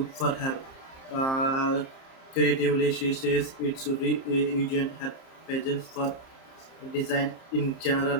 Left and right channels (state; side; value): late; right; 30 ms